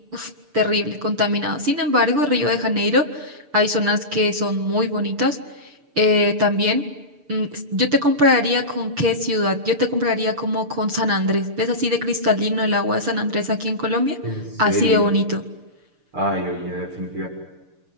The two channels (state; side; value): late; left; 6.8 ms